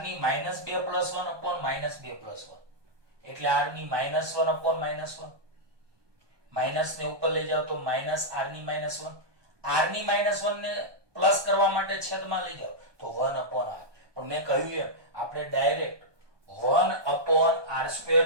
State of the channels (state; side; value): late; left; 1.2 ms